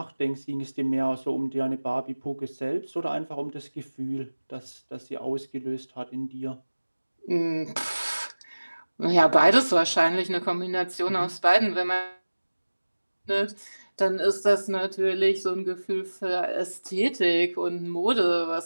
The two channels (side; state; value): both; inverted; correlation -1.00